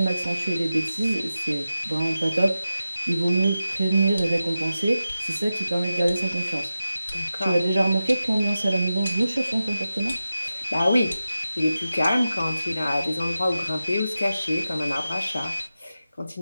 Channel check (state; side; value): inverted; both; correlation -0.93